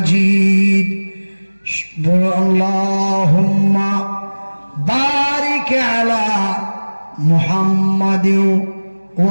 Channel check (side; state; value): both; inverted; correlation -1.00